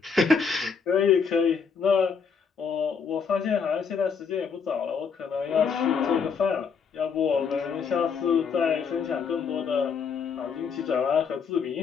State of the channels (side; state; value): right; quieter; 5.9 dB